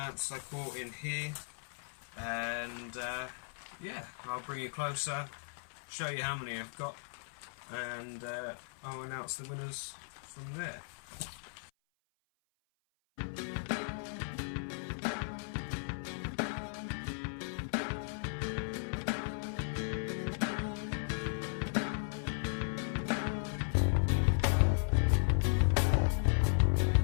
I caught in here, and yeah, I'll bring you closer, show you how many I've got, and I'll announce the winners from there.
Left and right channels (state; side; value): silent; right; 54 dB below the other